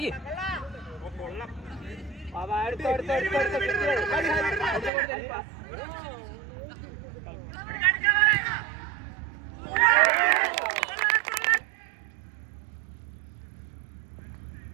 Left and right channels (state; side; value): drops out; left; at 4.9 s